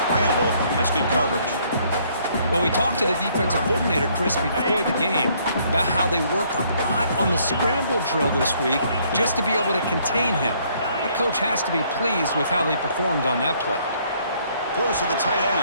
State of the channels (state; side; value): inverted; both; correlation -0.65